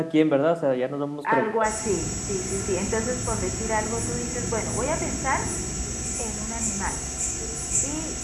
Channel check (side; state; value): both; identical; correlation 1.00